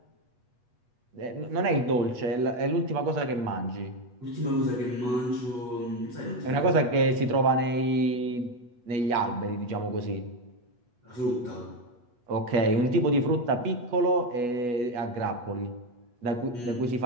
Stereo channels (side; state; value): left; late; 8.2 ms